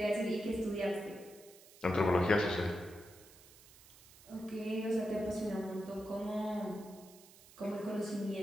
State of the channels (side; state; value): right; noise; hiss, 22 dB below the sound